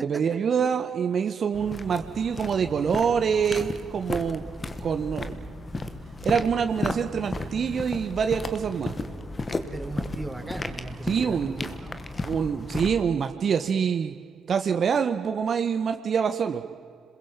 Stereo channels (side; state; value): left; quieter; 5.2 dB